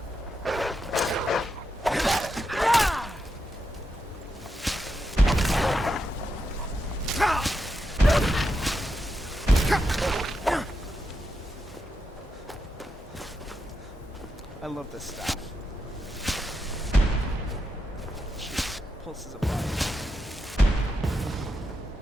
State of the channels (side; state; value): both; normal; correlation 0.85